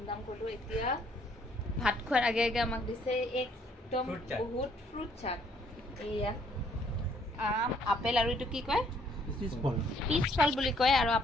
কৰিলো এতিয়া ভাত খোৱাৰ আগে আগে আমাক দিছে একদম বহুত ফ্ৰুট চাট এয়া আপেল আৰু এটো কি কয় পিছফল বুলি কয় আৰু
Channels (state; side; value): normal; both; correlation 0.65